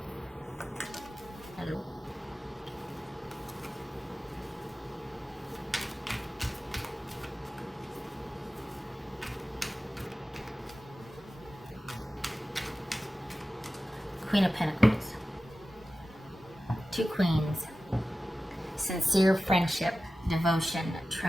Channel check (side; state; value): both; normal; correlation 0.95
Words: Hello. Queen of Pentacles. Two queens. Sincere friendship, devotion,